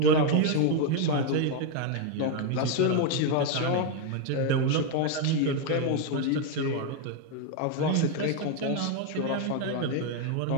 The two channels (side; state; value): both; different; correlation 0.01